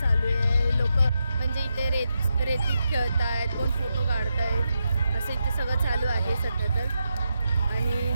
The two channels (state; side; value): inverted; both; correlation -0.85